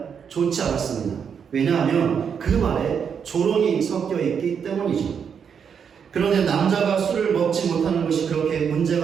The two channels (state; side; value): quieter; left; 7.1 dB